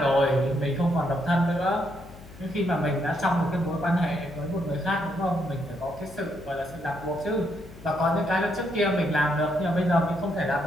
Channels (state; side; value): noise; left; hum, 19 dB below the sound